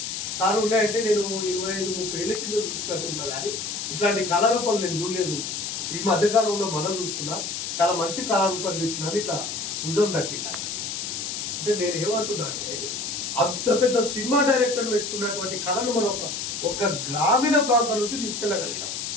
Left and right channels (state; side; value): noise; left; hiss, 4 dB below the sound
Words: సార్? ఉన్నాయంటే నేను 25-30 ఏళ్ళ కింద చూసినట్టు ఉన్నా, కానీ ఇట్లాంటి కళారూపాలు నేను చూడలేదు. ఈ మధ్యకాలంలో మనం చూస్తున్నా, చాలా మంచి కళారూపాలు ఇచ్చినాను. ఇట్లా భుజం తట్టినా అంటే నేను ఏమంటున్నా అంటే, అంత పెద్ద సినిమా డైరెక్టర్ మెచ్చుకున్నటువంటి కళను మనం ఒక గ్రామీణ ప్రాంతం నుంచి తీసుకెళ్ళగలిగినాం,